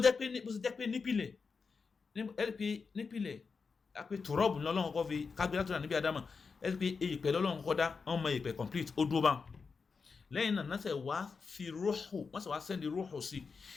ṣe jẹ́ pé nípìnlẹ̀ àpè tòrọ́ọ̀bù lọ́lọ́run kọ́ fi kágbé látọ̀dà níbi Ádámà ẹ̀rí pé èèpẹ̀ lọ́lọ́run kọ́ dá wọ́n mọ èèpẹ̀ complete ó dúró bá lẹ́yìn náà náà sẹ̀ wá fi rúhù wọ́n sì wá sẹ́ndì rúhù sí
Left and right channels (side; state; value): right; quieter; 5.1 dB